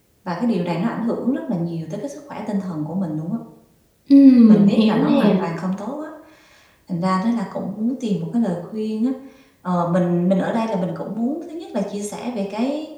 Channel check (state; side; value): identical; both; correlation 1.00